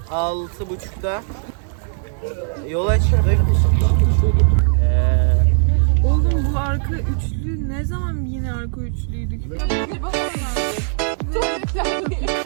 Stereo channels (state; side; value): silent; left; digital silence